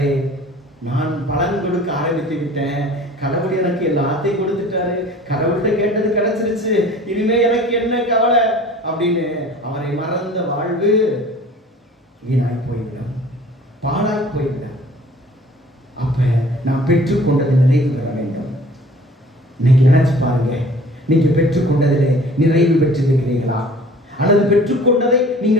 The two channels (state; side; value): normal; both; correlation 0.48